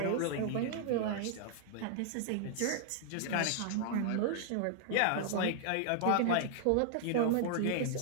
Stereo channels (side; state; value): both; different; correlation 0.00